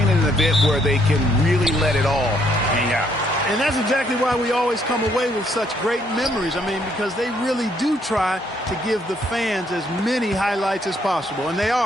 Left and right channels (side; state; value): both; normal; correlation 0.69